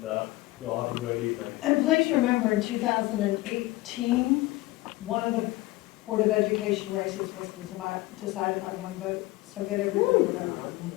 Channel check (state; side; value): quieter; right; 19.4 dB